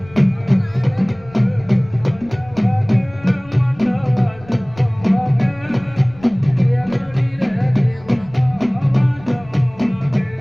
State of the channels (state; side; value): noise; left; rumble, 22 dB below the sound